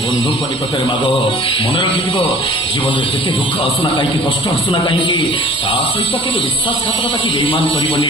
बंधु परिकतरे माग मन रखिब जीवन में केते दुख आसुना कहीं कष्ट आसुना कहीं ता सहित केबे विश्वासघातकता की बेईमान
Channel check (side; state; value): both; normal; correlation 0.47